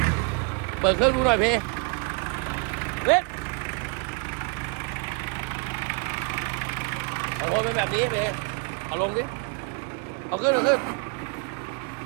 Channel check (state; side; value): quieter; left; 33.0 dB